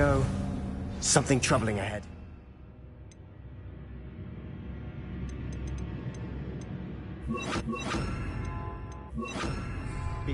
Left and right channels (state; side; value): identical; both; correlation 1.00